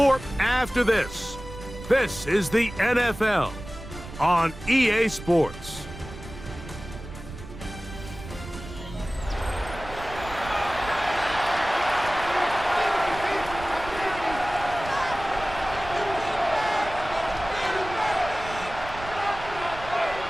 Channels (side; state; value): right; noise; rumble, 13 dB below the sound